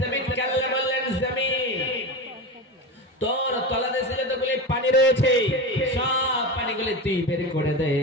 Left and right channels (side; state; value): both; normal; correlation 0.24